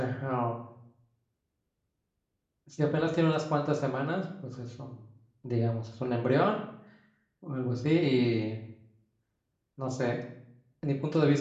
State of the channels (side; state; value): both; identical; correlation 1.00